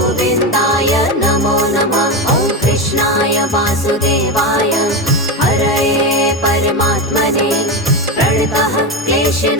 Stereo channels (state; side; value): normal; both; correlation 0.16